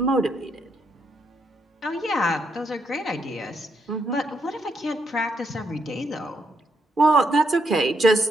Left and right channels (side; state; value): both; normal; correlation 0.77